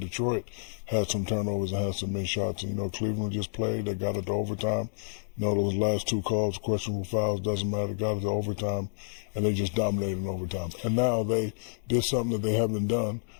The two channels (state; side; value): silent; right; digital silence